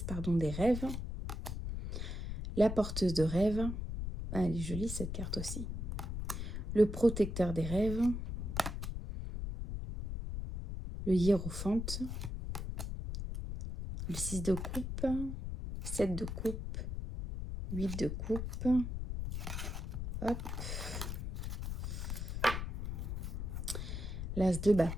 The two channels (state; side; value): noise; left; rumble, 4 dB below the sound